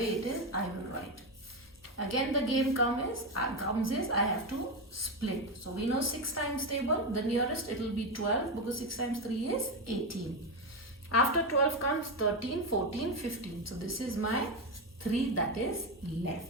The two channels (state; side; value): normal; both; correlation 0.11